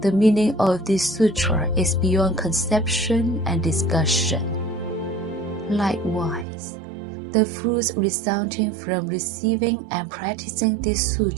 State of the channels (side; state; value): left; drops out; at 6.5 s